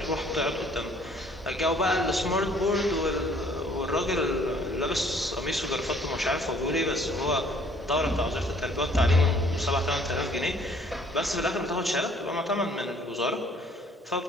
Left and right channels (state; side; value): normal; both; correlation 0.59